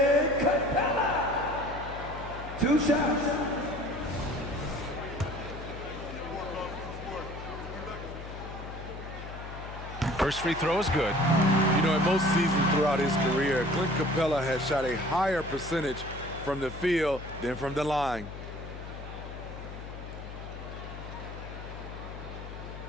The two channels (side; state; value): left; noise; hum, 11 dB below the sound